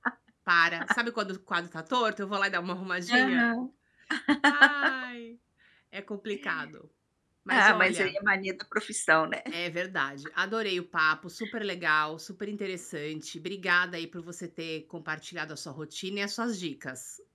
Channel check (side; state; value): both; identical; correlation 1.00